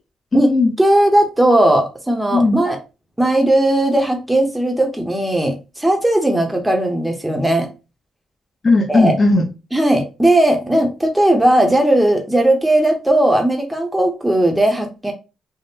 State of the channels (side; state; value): both; normal; correlation 0.90